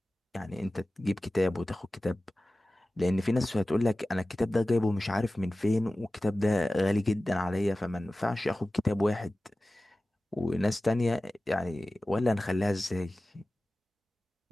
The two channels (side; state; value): both; normal; correlation 0.97